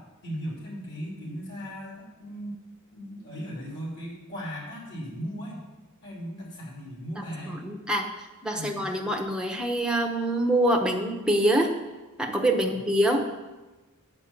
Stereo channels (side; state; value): both; normal; correlation 0.62